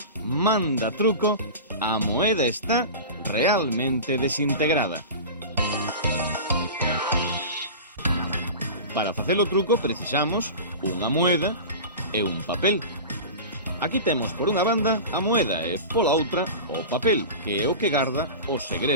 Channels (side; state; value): both; inverted; correlation -0.31